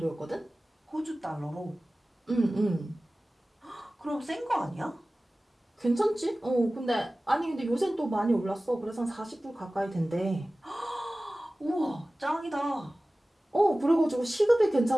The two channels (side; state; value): both; normal; correlation 0.97